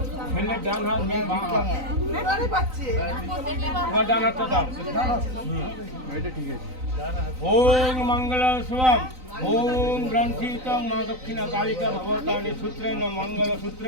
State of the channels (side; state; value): left; late; 3.9 ms